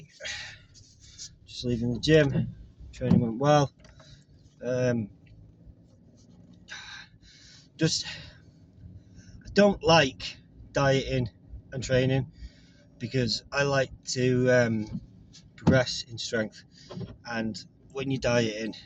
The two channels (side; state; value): both; identical; correlation 1.00